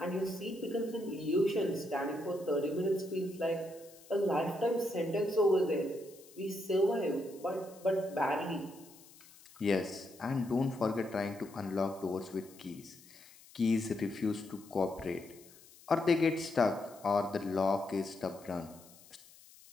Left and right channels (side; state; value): left; noise; hiss, 23 dB below the sound